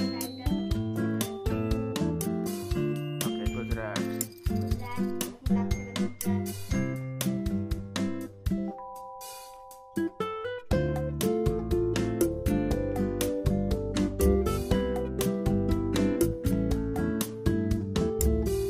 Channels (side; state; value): both; identical; correlation 1.00